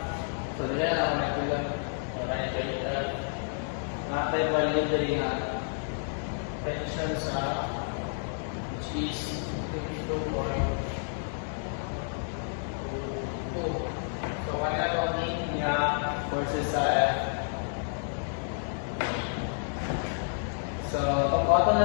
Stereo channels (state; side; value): silent; right; digital silence